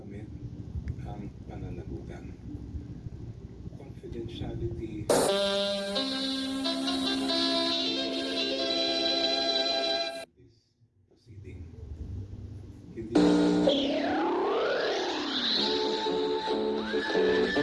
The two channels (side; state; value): both; identical; correlation 1.00